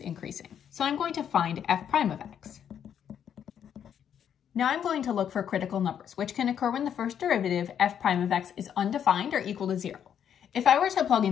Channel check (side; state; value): right; quieter; 8.9 dB